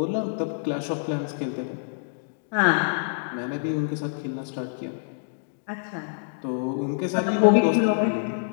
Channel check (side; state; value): right; silent; digital silence